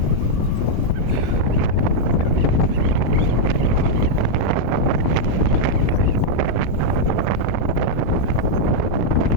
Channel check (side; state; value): right; late; 19 ms